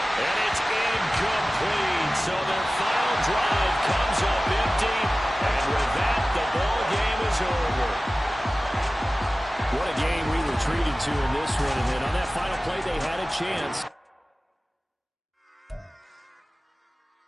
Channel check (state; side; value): normal; both; correlation 0.97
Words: And it's incomplete. So their final drive comes up empty. And with that, the ball game is over. What a game we were treated to in this one. And then on that final play, they had a chance.